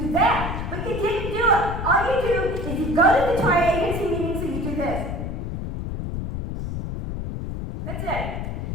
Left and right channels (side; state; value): left; noise; rumble, 4 dB below the sound